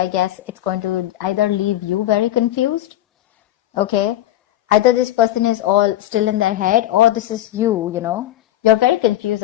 guess it's going to either leave you very confused, okay? Either this person is all still in their head, or this is you, You're very confused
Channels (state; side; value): quieter; right; 13.6 dB